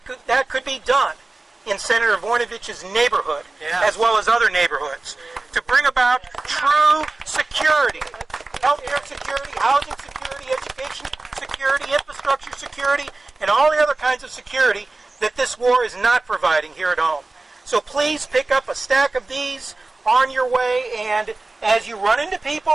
that could be done in Senator Voinovich's neighborhood, as well as other neighborhoods, to bring about true security, healthcare security, housing security, education security, infrastructure security, and all the other kinds of security that this war is not providing here at home. So please pick up a stack of these on your way, and as you run into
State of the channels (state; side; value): quieter; left; 3.3 dB